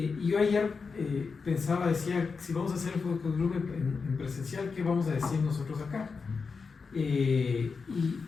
yo ayer decía, si vamos a hacer el focus group en presencial, ¿qué vamos a decir nosotros acá? Y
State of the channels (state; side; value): quieter; right; 5.0 dB